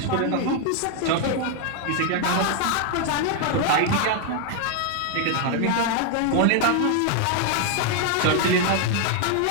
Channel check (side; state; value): both; different; correlation 0.00